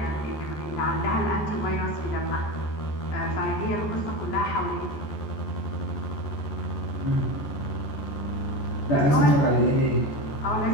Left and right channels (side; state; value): right; late; 14 ms